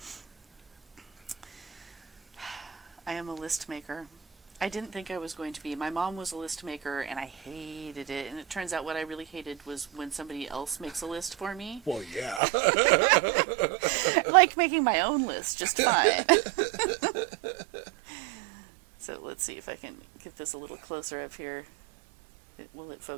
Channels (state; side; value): drops out; left; at 12.4 s